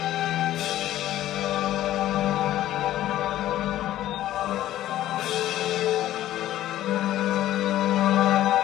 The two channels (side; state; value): right; quieter; 13.6 dB